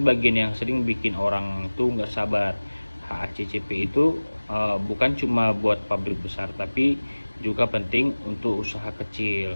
yang sering bikin orang tuh nggak sabar. HACCP itu bukan cuma buat pabrik besar, tapi juga penting untuk usaha kecil.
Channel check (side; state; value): both; inverted; correlation -1.00